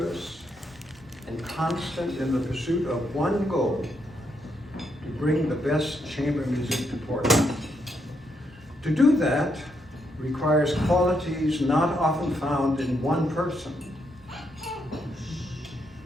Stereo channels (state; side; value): normal; both; correlation 0.78